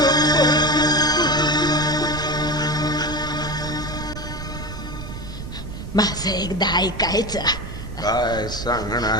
माझं एकदा ऐकायचं. काय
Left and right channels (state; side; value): noise; right; rumble, 9 dB below the sound